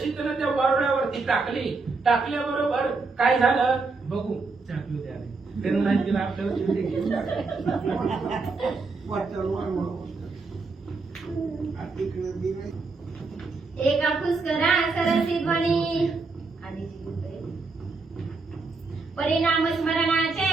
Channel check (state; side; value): quieter; left; 4.0 dB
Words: त्यानं त्या वारुळावरती टाकली. टाकल्याबरोबर काय झालं बघू. त्यांना नाही दिला आपल्याला चिमटे घेऊन एका पुष्करा सरसी ध्वनी परिणाम